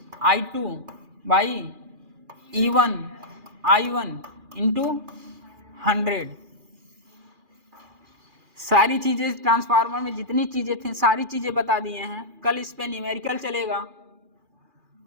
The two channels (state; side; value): late; left; 2.4 ms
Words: I2 by E1 I1 into 100। सारी चीजें ट्रांसफार्मर में जितनी चीजें थी सारी चीजें बता दिए हैं। कल इस पे न्यूमेरिकल चलेगा,